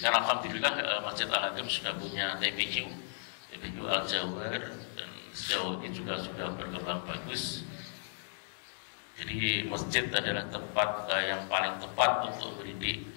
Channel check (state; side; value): silent; right; digital silence